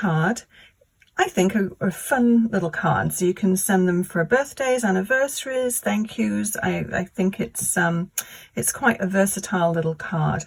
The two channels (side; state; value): both; identical; correlation 1.00